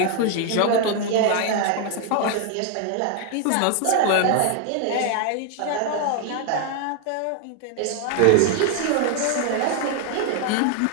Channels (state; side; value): different; both; correlation 0.00